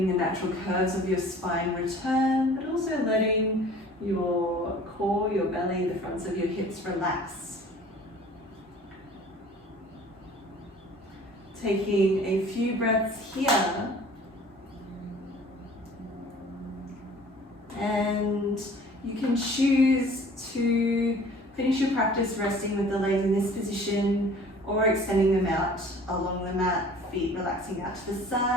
the natural curves of your spine return, but also letting your core, your belly, the fronts of your hips relax. Taking a few breaths here. And you can choose to finish your practice resting with the legs in this position or extending them out along the mat, feet relaxing out to the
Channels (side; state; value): both; normal; correlation 0.49